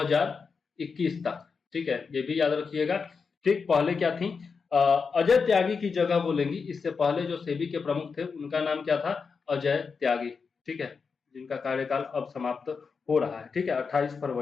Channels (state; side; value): quieter; right; 5.3 dB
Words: तक, ठीक है, ये भी याद रखिएगा। ठीक, पहले क्या थी? अजय त्यागी की जगह वो लेंगी। इससे पहले जो सेबी के प्रमुख थे उनका नाम क्या था? अजय त्यागी, ठीक है, जिनका कार्यकाल अब समाप्त हो रहा है, ठीक है, 28